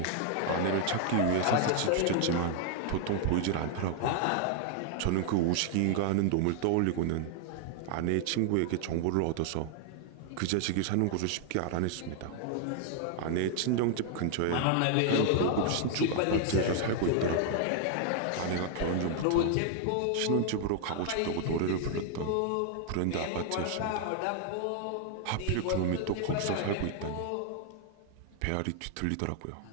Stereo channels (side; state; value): both; different; correlation 0.00